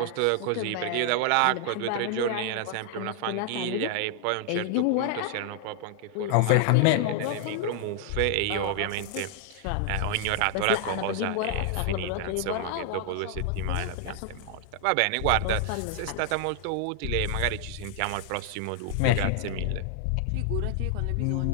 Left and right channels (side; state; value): both; different; correlation 0.00